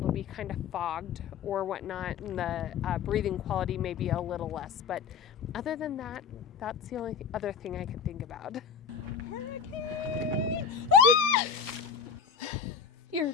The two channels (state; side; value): quieter; right; 6.6 dB